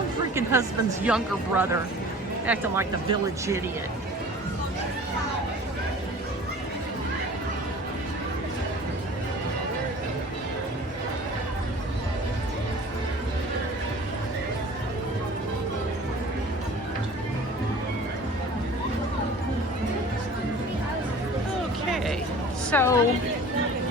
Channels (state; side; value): normal; both; correlation 0.44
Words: husband's younger brother acting like the village idiot. So,